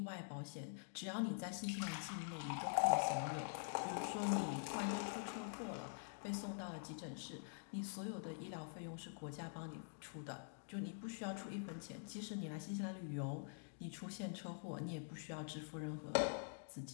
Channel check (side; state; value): right; silent; digital silence